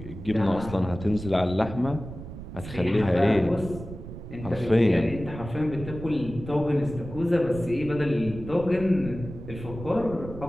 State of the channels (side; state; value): right; noise; rumble, 11 dB below the sound